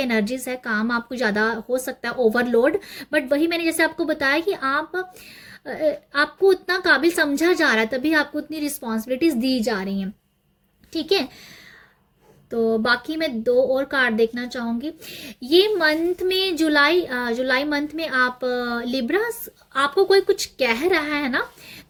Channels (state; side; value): identical; both; correlation 1.00